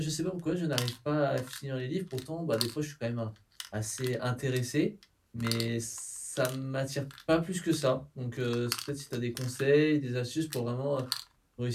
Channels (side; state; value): both; identical; correlation 1.00